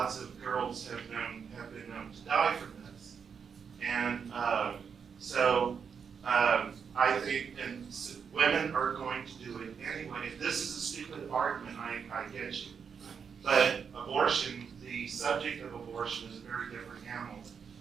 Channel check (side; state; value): left; quieter; 6.6 dB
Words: of girls have been known to die from this. And I think women are going to do it anyway. If this is a stupid argument, I get you. But abortion, the subject of abortion is a very different animal.